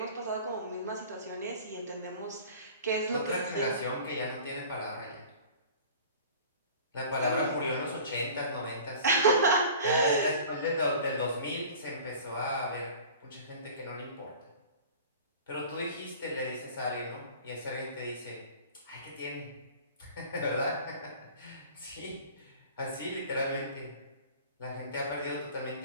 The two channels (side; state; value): both; inverted; correlation -0.43